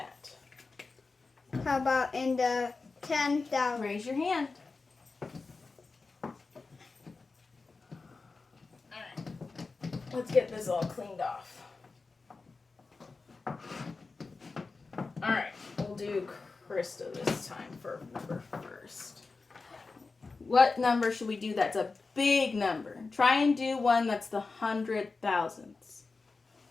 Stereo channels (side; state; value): right; quieter; 4.1 dB